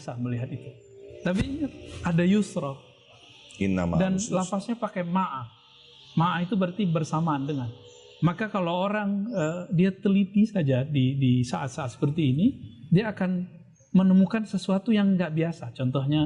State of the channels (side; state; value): both; identical; correlation 1.00